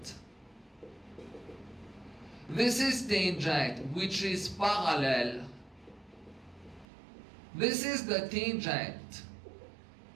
This is tangent which is parallel. This is the tangent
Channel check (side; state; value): left; drops out; at 6.9 s